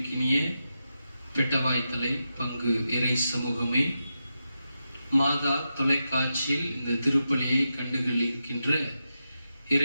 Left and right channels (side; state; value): both; inverted; correlation -0.88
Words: பெட்டவாய்த்தலை பங்கு இறை சமூகமே, மாதா தொலைக்காட்சியில் இந்த திருப்பலியை கண்டுகளிக்கின்ற